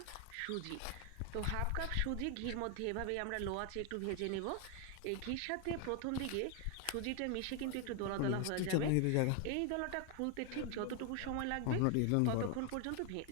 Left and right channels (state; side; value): different; both; correlation 0.00